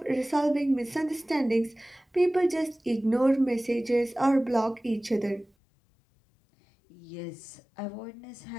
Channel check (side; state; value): right; drops out; at 5.5 s